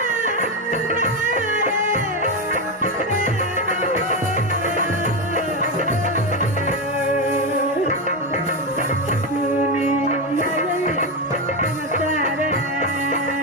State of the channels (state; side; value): normal; both; correlation 0.11